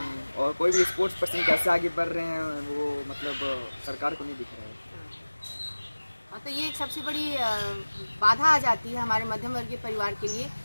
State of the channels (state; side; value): inverted; both; correlation -1.00